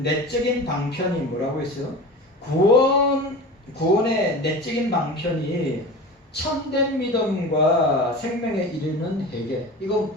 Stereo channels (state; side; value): normal; both; correlation 0.33